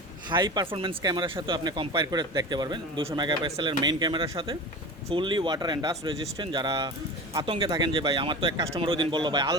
হাই পারফরমেন্স ক্যামেরার সাথে আপনি কম্পেয়ার করে দেখতে পারবেন। 200 মেগাপিক্সেলের মেইন ক্যামেরার সাথে, fully water and dust resistant. যারা আতঙ্কে থাকেন যে ভাই আমার তো এক কাস্টমার ওই দিন বললো ভাই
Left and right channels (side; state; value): both; normal; correlation 0.31